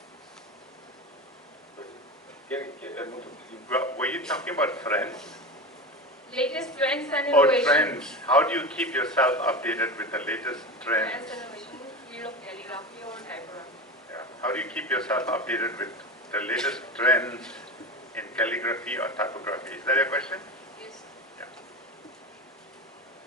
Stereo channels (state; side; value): normal; both; correlation 0.25